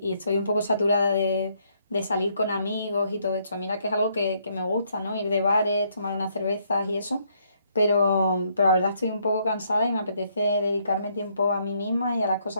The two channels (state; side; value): inverted; both; correlation -0.71